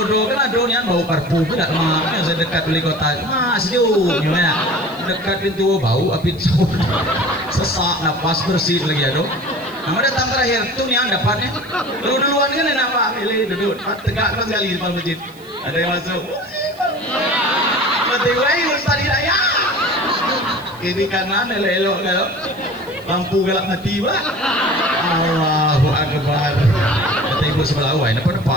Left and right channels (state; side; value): noise; right; hiss, 25 dB below the sound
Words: kan ada yang bau parfum tidak mah. Yang saya dekat beli kota, mas sejuk gimana? Dekat pintu bau api sesak napas bersih lagi ada. Nah, datang terakhir tuh yang dapatnya. Lu duluan kan enak Pak, milih duduk tegak sekali di depan masjid. Ada yang masuk. Mati lain Ustaz Hidayah. Kiri kanan elok kalau lampu galak mati Pak. Allahu Akbar. Kata ibu sebelah awal, apa